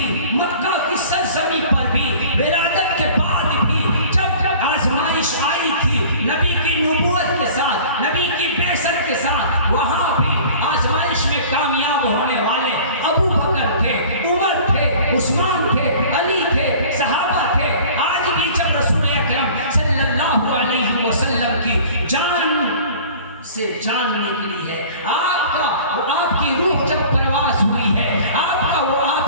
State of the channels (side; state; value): both; inverted; correlation -0.45